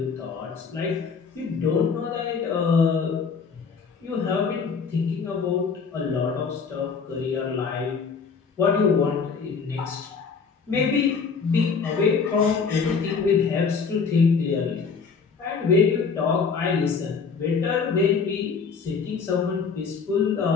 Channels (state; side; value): quieter; right; 5.4 dB